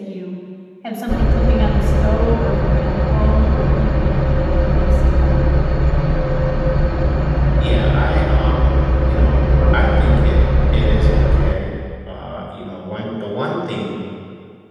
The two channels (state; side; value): identical; both; correlation 1.00